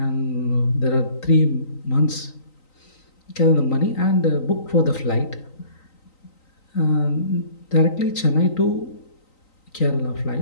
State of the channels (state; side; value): late; right; 3.9 ms